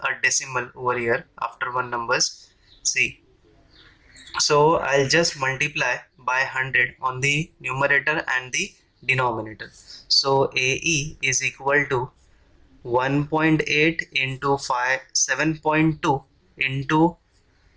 a decimal over here after one numbers. See, so I'll just multiply by 100 on the numerator and the denominator. So AE is equal to 1.8 into 5 7.2 into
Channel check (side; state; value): both; identical; correlation 1.00